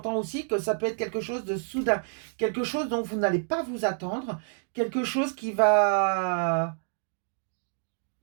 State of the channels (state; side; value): silent; left; digital silence